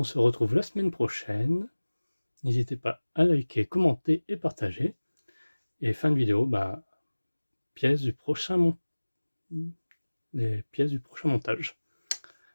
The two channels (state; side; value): inverted; both; correlation -1.00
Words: se retrouve la semaine prochaine. N'hésitez pas à liker, commenter et partager. Et fin de vidéo, bah, les pièces du prochain montage.